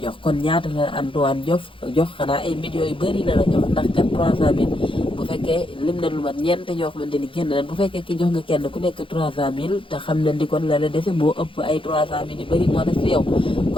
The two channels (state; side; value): late; right; 0.25 ms